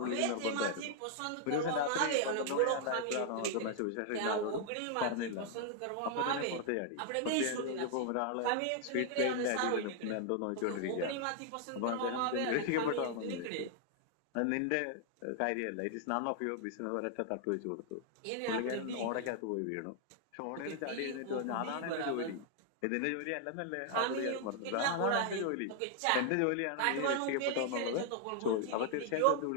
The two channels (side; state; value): both; different; correlation 0.00